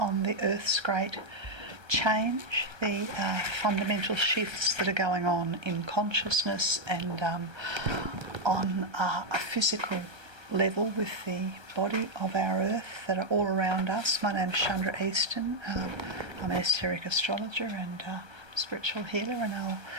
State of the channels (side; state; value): left; late; 1.3 ms